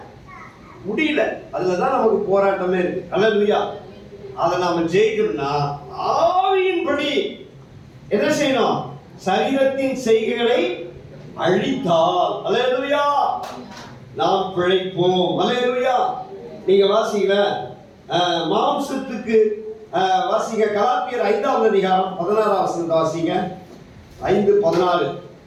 முடியல. அதுலதான் நமக்கு போராட்டமே இருக்கு. அல்லேலூயா. அதை நாம ஜெயிக்கணும்னா ஆவியின்படி என்ன செய்யணும்? சரீரத்தின் செய்கைகளை அழித்தால் அல்லேலூயா நாம் பிழைப்போம். அல்லேலூயா. நீங்க வாசிக்கல மாம்சத்துக்கு வாசிங்க கலாத்தியர் 5வது அதிகாரம் 16வது வசனத்தை வாசிங்க. 5:16.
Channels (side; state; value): both; identical; correlation 1.00